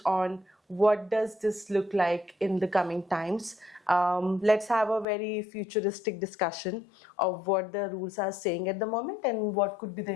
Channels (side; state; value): right; drops out; at 5.1 s